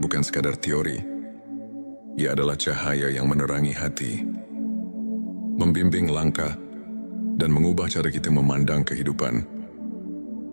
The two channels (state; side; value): inverted; both; correlation -1.00